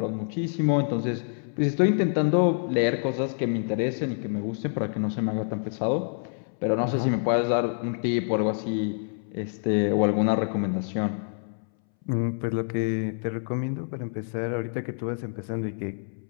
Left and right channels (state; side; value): silent; right; 60 dB below the other